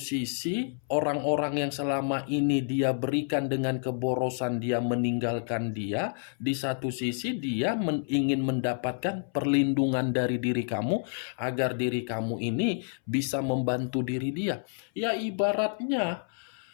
orang-orang yang selama ini dia berikan dengan keborosan dia meninggalkan dia. Di satu sisi, dia ingin mendapatkan perlindungan dari diri kamu, agar diri kamu ini bisa membantu diri dia. Ya ibaratnya,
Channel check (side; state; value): right; silent; 59 dB below the other